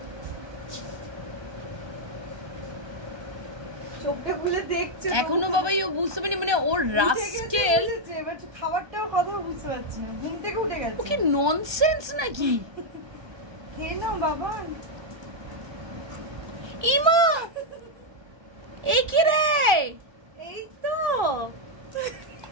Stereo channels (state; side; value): late; left; 1.3 ms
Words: চোখটা খুলে দেখছে এখনো বাবাই ও বুঝতে পারেনি, মানে ওর রাস্কেল খাবারটাও কথা বুঝতে পারছি না, ঘুম থেকে উঠে গেছে। ও কি ননসেন্স নাকি? খেয়ে নাও বাবা। ইমা এই কি রে? এই তো